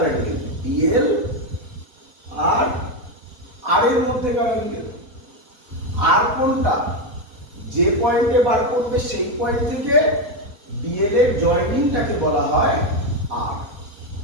অ্যাঙ্গেল? ডিএল আর আর এর মধ্যেকার অ্যাঙ্গেল। আর কোনটা? যে পয়েন্টে বার করবে সেই পয়েন্ট থেকে ডিএল এর জয়েনিংটাকে বলা হয় আর।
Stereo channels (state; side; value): late; left; 4.1 ms